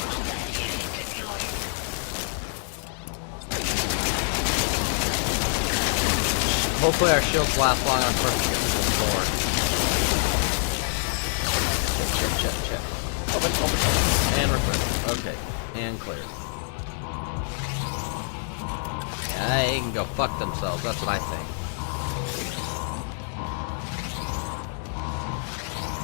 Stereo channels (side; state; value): right; silent; digital silence